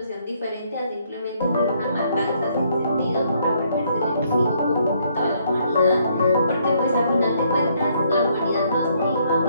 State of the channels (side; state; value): both; inverted; correlation -0.69